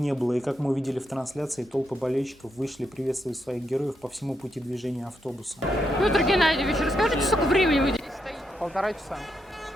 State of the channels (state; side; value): normal; both; correlation 0.81